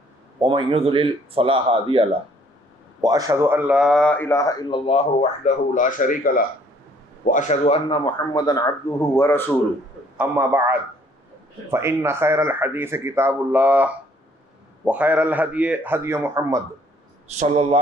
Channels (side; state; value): both; normal; correlation 0.62